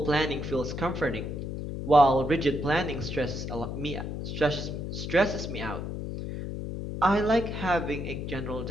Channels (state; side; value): noise; left; hum, 5 dB below the sound